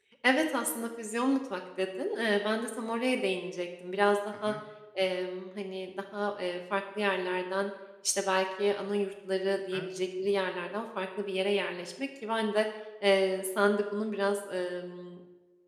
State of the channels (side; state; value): both; identical; correlation 1.00